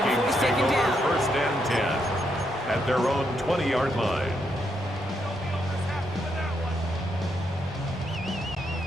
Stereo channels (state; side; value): normal; both; correlation 0.78